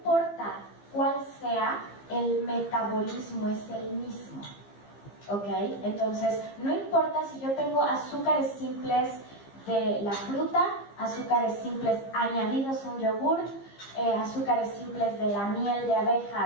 cuál sea, el metabolismo es el mismo, ¿ok? Entonces, no importa si yo tengo azúcares simples de la fruta, azúcares simples añadidos a un yogurt, azúcares simples de la miel de abeja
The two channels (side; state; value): right; late; 15 ms